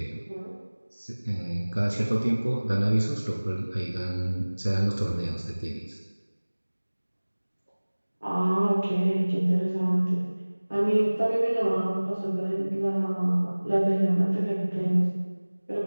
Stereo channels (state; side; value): inverted; both; correlation -1.00